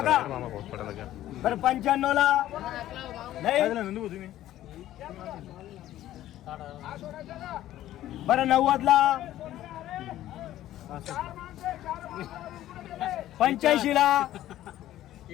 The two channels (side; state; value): right; quieter; 13.5 dB